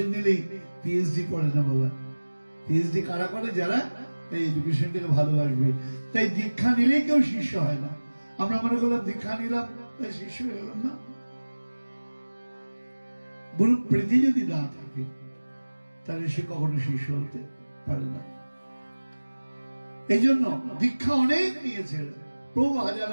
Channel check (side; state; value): both; inverted; correlation -1.00